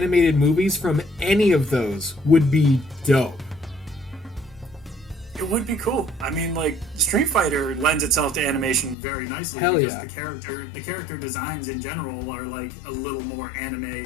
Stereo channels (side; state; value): right; drops out; at 9.0 s